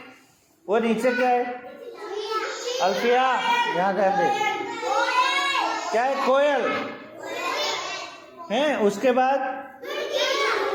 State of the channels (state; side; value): identical; both; correlation 1.00